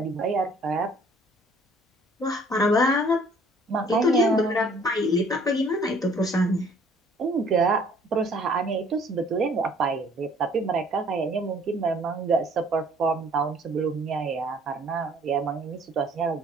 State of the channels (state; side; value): normal; both; correlation 0.57